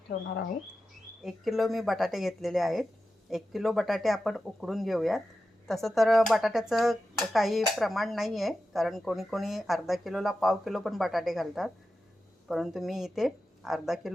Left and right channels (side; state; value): both; normal; correlation 0.92